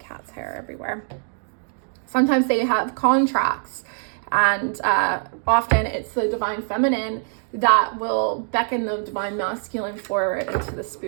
hair everywhere. Sometimes they have contracts, and often it's the Divine Feminine that will beckon the Divine Masculine forward into the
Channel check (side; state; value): left; silent; 63 dB below the other